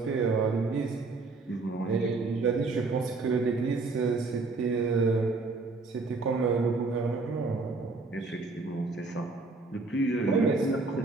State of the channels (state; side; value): quieter; left; 3.8 dB